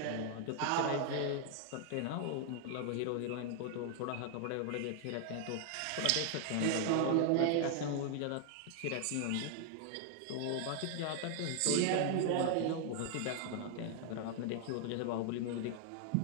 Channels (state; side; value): different; both; correlation 0.00